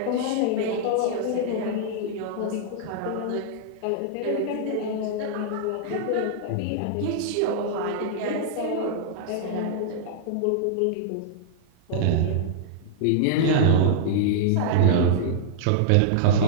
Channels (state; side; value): different; both; correlation -0.01